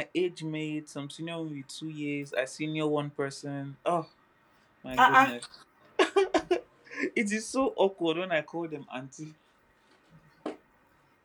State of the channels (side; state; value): both; identical; correlation 1.00